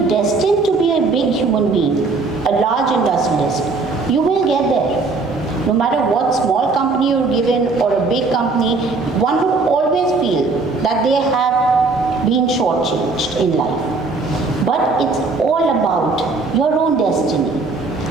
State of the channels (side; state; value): left; quieter; 3.9 dB